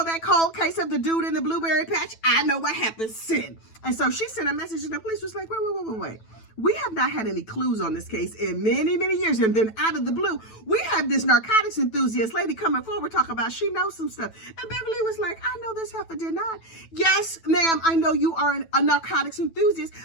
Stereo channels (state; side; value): late; right; 9.1 ms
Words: that cold case of the dude in the blueberry patch? I know what happened. Send. And so she sent a message and the police was like, wait. We have not had any clues on this case in many, many years. And then out of the blue, we have this narcotics enthusiast lady coming forward talking about she knows some stuff. And Beverly was like, I know this heifer did not. Yes, ma'am, I know you are a narcotics enthusiast,